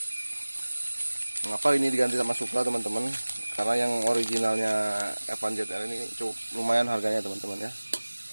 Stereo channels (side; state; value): both; inverted; correlation -1.00